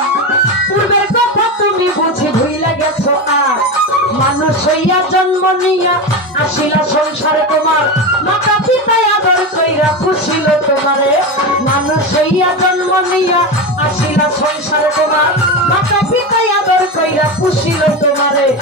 পূর্বের কথা তুমি বুঝি ভুইলা গেছ মানুষ হইয়া জন্ম নিয়া আসিলা সংসারে তোমার মাতা পিতায় আদর কইরা খুশিল তোমারে মানুষ হইয়া জন্ম নিয়া আসিলা সংসারে তোমার মাতা পিতায় আদর কইরা খুশিল তোমারে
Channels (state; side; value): normal; both; correlation 0.19